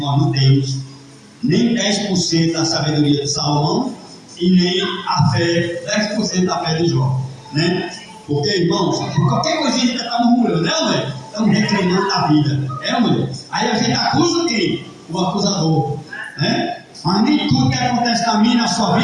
nós não temos nem 10% da sabedoria de Salomão e nem a fé, 10% da fé de Jó, né? Porque, irmãos, qualquer coisinha a gente está murmurando, né, mulher? Estamos reclamando da vida, mulher? Aí a gente acusa quem? O acusador, né? Mas nem tudo que acontece na minha e na sua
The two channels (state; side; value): identical; both; correlation 1.00